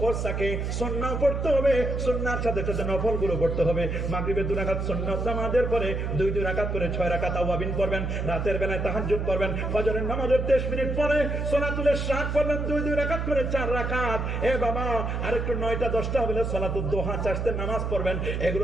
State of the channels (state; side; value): noise; right; hum, 2 dB below the sound